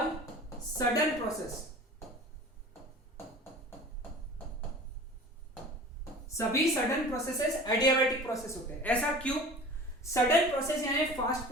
sudden process. सभी सडन प्रोसेसेस एडियाबैटिक प्रोसेस होते हैं। ऐसा क्यों? सडन प्रोसेस यानी फास्ट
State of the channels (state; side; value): normal; both; correlation 0.40